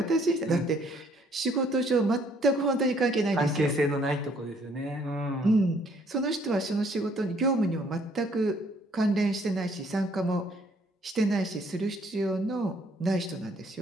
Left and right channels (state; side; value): normal; both; correlation 0.64